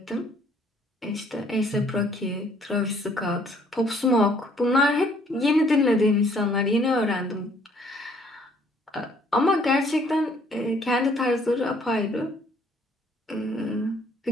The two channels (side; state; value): both; normal; correlation 0.62